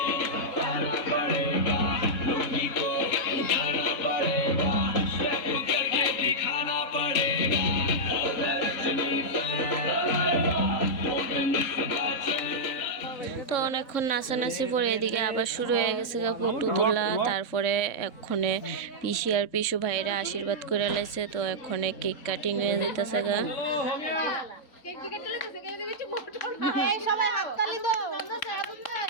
তো অনেকক্ষণ নাচানাচি পরে এদিকে আবার শুরু হয়ে গেছে গা ফটো তোলা। তারপরে এক্ষণে পিসি আর পিসু ভাইরা আশীর্বাদ করে লাইছে। তো এক্ষণে কেক কাটিং হয়ে যেতেছে গা।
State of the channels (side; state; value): right; late; 3.6 ms